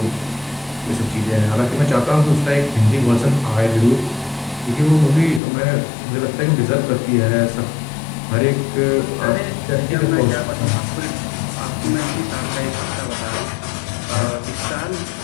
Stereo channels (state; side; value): drops out; right; at 5.4 s